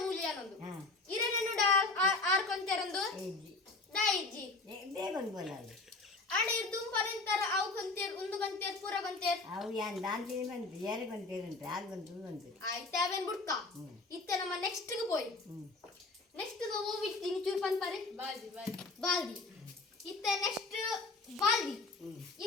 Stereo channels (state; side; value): quieter; right; 3.6 dB